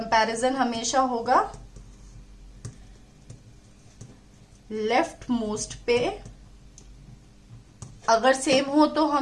हमेशा होगा लेफ्ट मोस्ट पे। अगर सेम हो तो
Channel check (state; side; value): identical; both; correlation 1.00